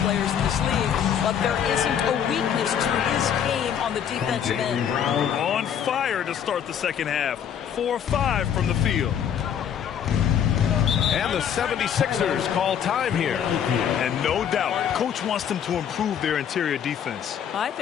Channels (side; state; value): right; quieter; 8.7 dB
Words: in this league, but there isn't a weakness to his game on the defensive end. On fire to start the second half. 4-5 from the field. And the 76ers call time here. And no doubt, coach wants them to improve their interior defense. I